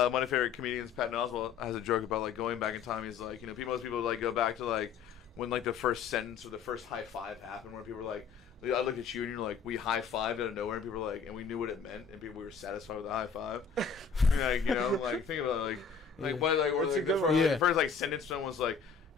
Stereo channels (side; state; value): right; quieter; 6.2 dB